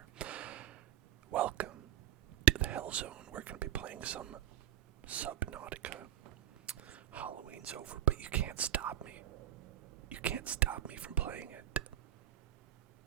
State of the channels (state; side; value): quieter; left; 12.6 dB